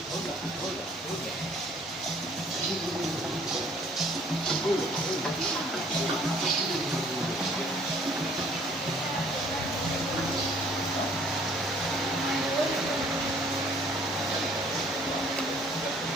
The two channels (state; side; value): normal; both; correlation 0.58